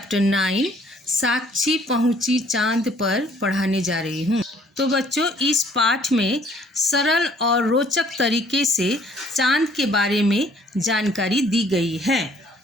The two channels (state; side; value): normal; both; correlation 0.60